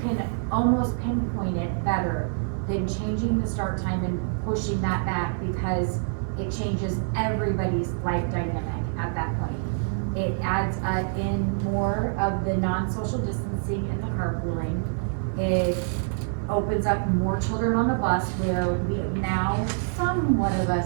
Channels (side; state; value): left; silent; 61 dB below the other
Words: almost pinpoint it better than changing the start time and pushing that back, because it changes everybody's life dynamic at that point. It adds in more of the non-social distancing and the carpooling. It opens up more children on the bus, where we now, somewhat of us